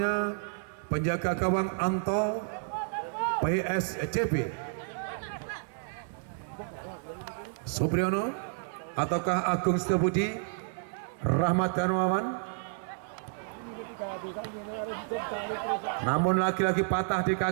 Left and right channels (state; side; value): silent; left; digital silence